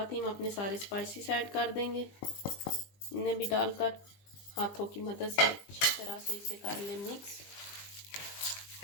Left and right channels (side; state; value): right; late; 20 ms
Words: ही हम अपने सारे स्पाइसेस ऐड कर देंगे। इन्हें भी डालकर हाथों की मदद से अच्छी तरह से इसे कर लें मिक्स।